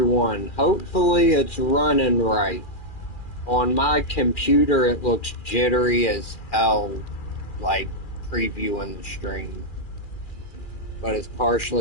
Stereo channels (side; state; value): right; late; 2.4 ms